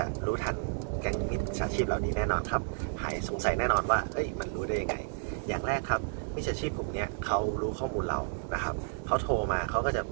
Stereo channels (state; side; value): silent; left; digital silence